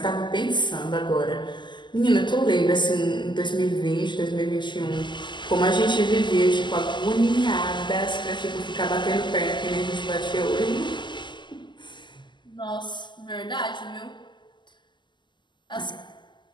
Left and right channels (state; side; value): late; right; 0.22 ms